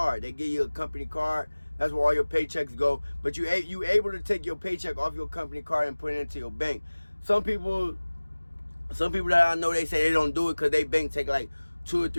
They give you a company card. That's where all your paychecks go. But you able to take your paycheck off your company card and put it into your bank. Some people that I know, they say they don't do it because they bank take like 2 or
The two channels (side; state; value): both; inverted; correlation -1.00